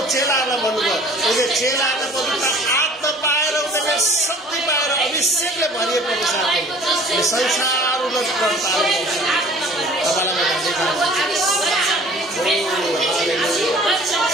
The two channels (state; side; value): normal; both; correlation 0.50